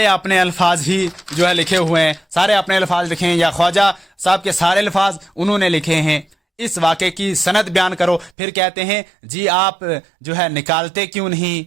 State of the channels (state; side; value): drops out; left; at 8.3 s